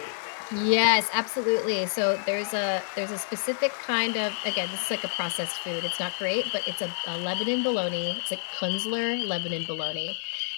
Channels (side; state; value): right; silent; digital silence